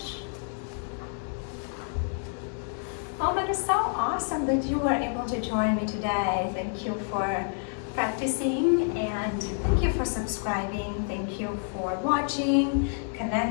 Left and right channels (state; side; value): silent; right; 59 dB below the other